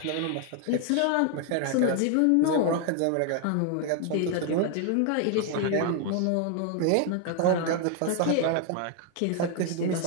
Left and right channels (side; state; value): both; different; correlation 0.00